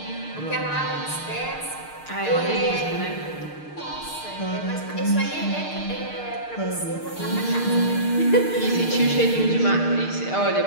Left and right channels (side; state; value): right; late; 6.6 ms